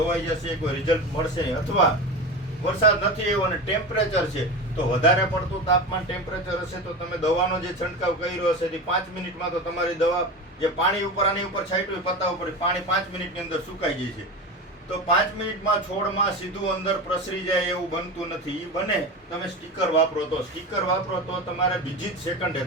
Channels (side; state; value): both; normal; correlation 0.25